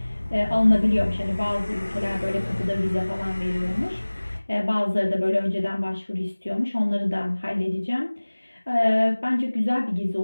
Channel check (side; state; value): both; inverted; correlation -1.00